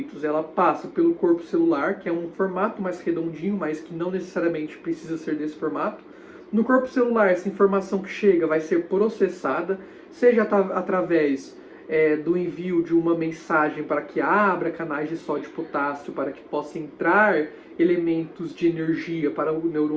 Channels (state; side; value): identical; both; correlation 1.00